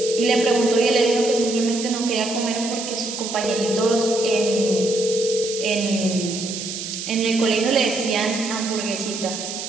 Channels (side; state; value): right; noise; hiss, 7 dB below the sound